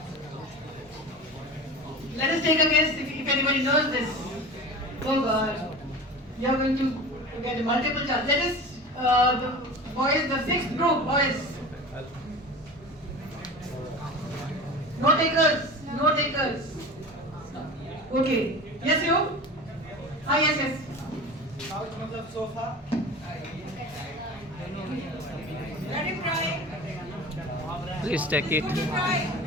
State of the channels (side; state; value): both; normal; correlation 0.34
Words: Let us take a guess if anybody knows this. Oh God, you are going to get multiple chances. Let us, the boys, the sixth group, boys. No takers, no takers. Okay. Yes, you? Ah, yes. Couch मतलब sofa. Let him try. Please take it. Try.